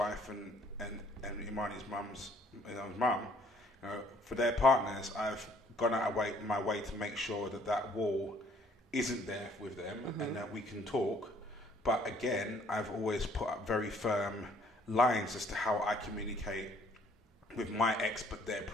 and Imani's mum's mum, you know, for their partners, I've gone out of my way to make sure that wall isn't there with them, and that we can talk. But again, I've always put up very firm lines as to how I communicate with my ex, but they're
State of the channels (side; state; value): both; normal; correlation 0.61